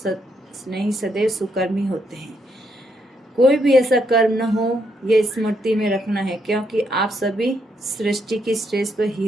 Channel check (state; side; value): normal; both; correlation 0.76